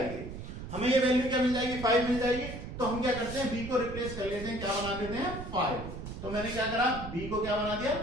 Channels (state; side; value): noise; right; rumble, 9 dB below the sound